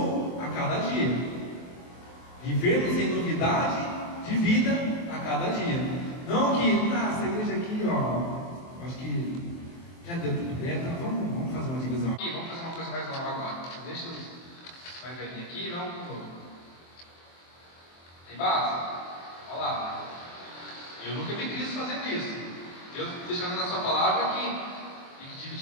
a cada dia. Vivermos em novidade de vida a cada dia. Não que, essa igreja aqui, acho que já deu tudo bem, então vamos fazer uma divisão aqui, vamos fazer uma coisa mais nova agora. Deixa os mais velhinhos aqui, vamos pro novo. Tem base? Olha lá. Eu nunca vi Cristo fazendo isso. Deus deixando na sua palavra que tem que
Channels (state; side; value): late; right; 23 ms